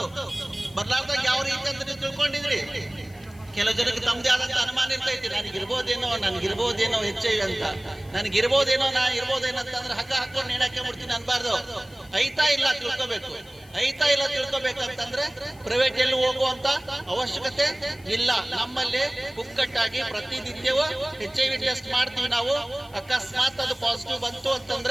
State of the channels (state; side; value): noise; left; hiss, 26 dB below the sound